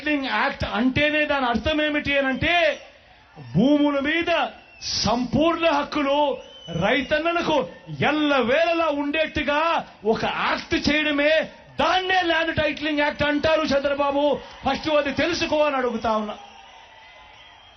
యాక్ట్ అంటేనే దాని అర్థం ఏమిటి అనంటే భూముల మీద సంపూర్ణ హక్కులు రైతన్నలకు ఎల్లవేళలా ఉండేట్టుగా ఒక యాక్ట్ చేయడమే, దాన్నే ల్యాండ్ టైటిలింగ్ యాక్ట్ అంటారు చంద్రబాబు. ఫస్ట్ అది తెలుసుకో అని అడుగుతా ఉన్నా.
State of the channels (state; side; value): identical; both; correlation 1.00